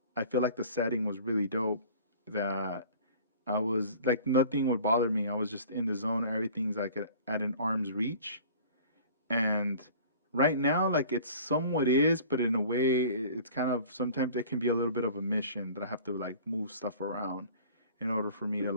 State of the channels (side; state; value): both; inverted; correlation -0.45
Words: I feel like the setting was really dope. That I was like nothing would bother me. I was just in the zone. Everything's like at an arm's reach. And right now, like it's somewhat is, but in a way, it's kind of sometimes it can be a little bit of a mission that I have to like move stuff around in order for me to